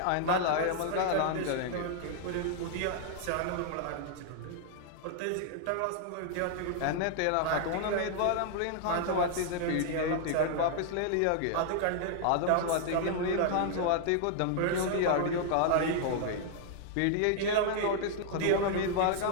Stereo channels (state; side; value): different; both; correlation -0.01